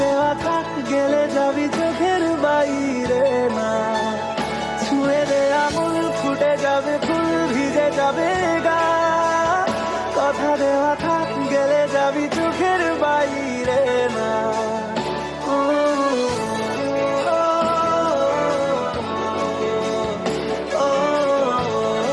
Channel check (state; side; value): identical; both; correlation 1.00